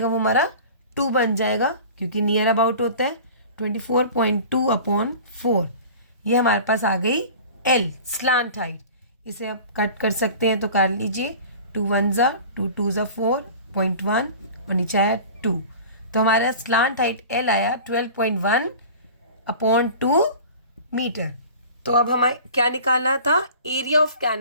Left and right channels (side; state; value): both; inverted; correlation -0.40